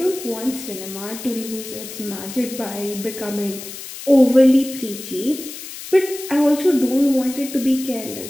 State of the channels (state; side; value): noise; left; hiss, 12 dB below the sound